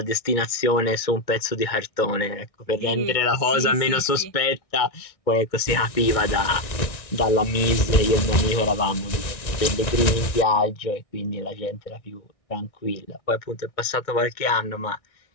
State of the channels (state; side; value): late; right; 1.6 ms